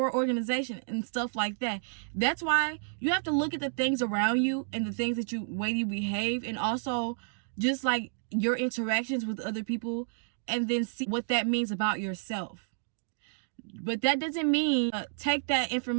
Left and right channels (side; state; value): left; silent; digital silence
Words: organization, and stuff like that. That's why you have to look at the things around you and the things that way you behave, and also just like your interactions with other people, and then see what that means about yourself. But that doesn't mean take that